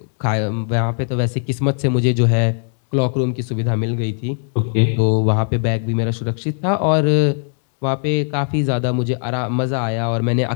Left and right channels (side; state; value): right; silent; digital silence